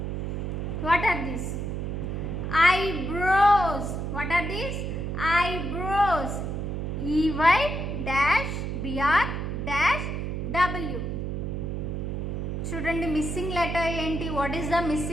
What are these? Eyebrows. What are these? Eyebrows. EY-BR-W. చూడండి missing letter ఏంటి? What is the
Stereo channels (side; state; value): right; noise; hum, 3 dB below the sound